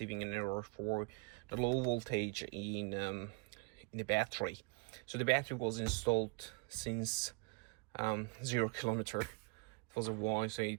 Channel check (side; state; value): left; quieter; 32.0 dB